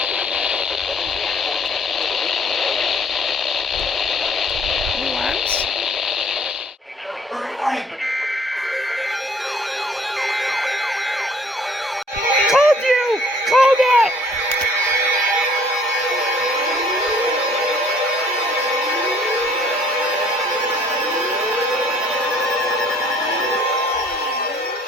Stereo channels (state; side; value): normal; both; correlation 0.58